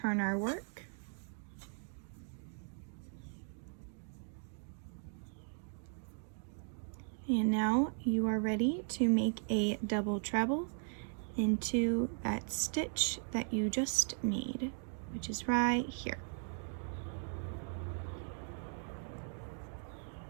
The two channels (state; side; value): silent; left; 52 dB below the other